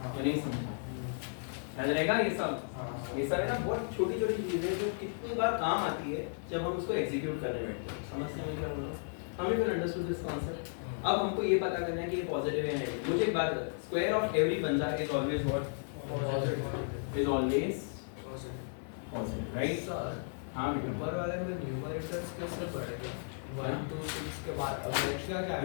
नहीं समझा? याद रहेगा ये सब? ये सब है ना बहुत छोटी छोटी चीजें जो कितनी बार काम आती है जब हम उसको एग्जीक्यूट करने बैठते हैं। समझते हैं क्या बोल रहा हूँ? हमें फिर अंडरस्टूड दिस कॉन्सेप्ट। अब हमको ये पता करना है कि ये पॉजिटिव है या नेगेटिव। मुझे एक बात बता, स्क्वायर ऑफ एवरी बंदा is always what? Positive. Is always positive, right sir? हां बेटा। ऊपर वाले में न्यूमरेटर्स कैसे पढ़ेगा? 1 2 6 के बाद अब नेक्स्ट क्या आएगा?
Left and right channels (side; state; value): right; silent; 55 dB below the other